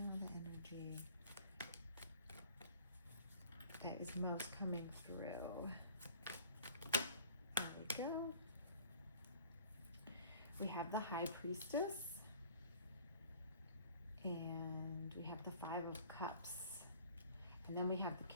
the energy that is most coming through. There we go. We have the High Priestess. And we have the 5 of Cups. And then we have the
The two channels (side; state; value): both; inverted; correlation -0.48